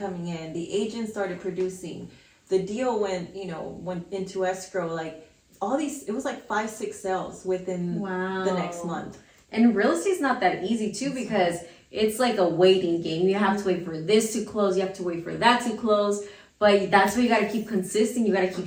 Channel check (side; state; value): both; identical; correlation 1.00